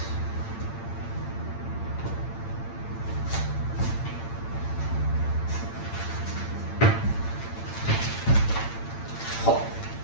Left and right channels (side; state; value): right; late; 8.8 ms